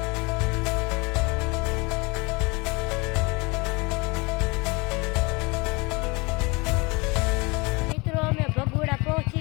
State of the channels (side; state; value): right; quieter; 27.1 dB